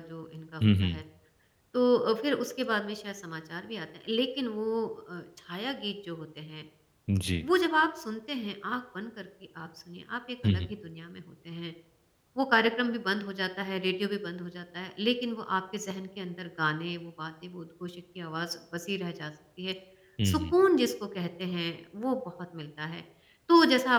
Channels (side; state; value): both; identical; correlation 1.00